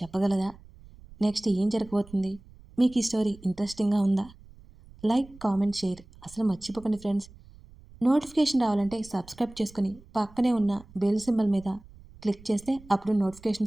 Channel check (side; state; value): right; noise; rumble, 22 dB below the sound